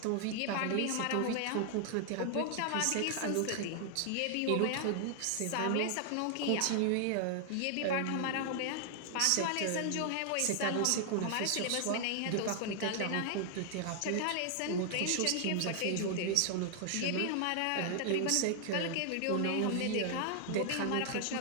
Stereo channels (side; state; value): both; different; correlation 0.00